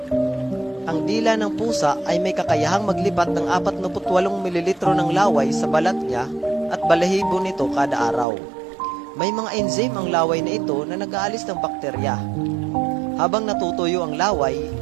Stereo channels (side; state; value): left; drops out; at 8.2 s